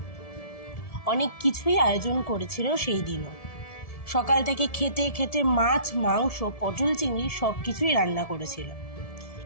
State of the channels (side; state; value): right; late; 1.7 ms